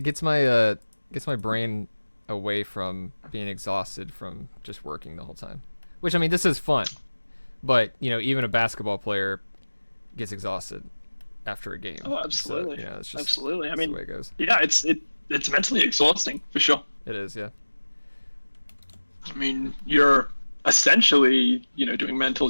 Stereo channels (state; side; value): inverted; both; correlation -1.00